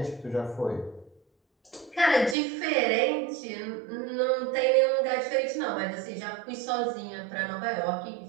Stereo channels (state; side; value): drops out; left; at 2.4 s